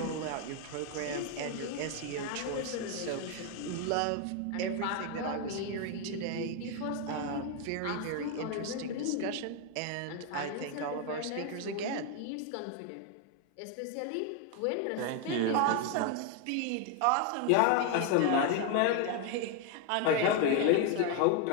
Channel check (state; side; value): different; both; correlation 0.01